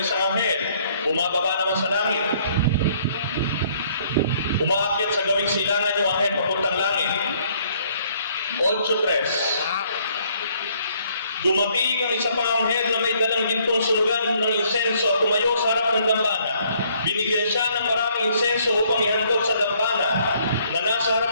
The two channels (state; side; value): inverted; both; correlation -0.64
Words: isang anghel, bumababa naman sa langit. Umaakyat sa gawing silangan yung anghel papuntang langit. 8:3. Dumating ang isa pang anghel na may dalang gintong sunugan ng insenso at tumayo sa harap ng dambana. Binigyan siya ng maraming insenso upang ihandog sa dambana na nasa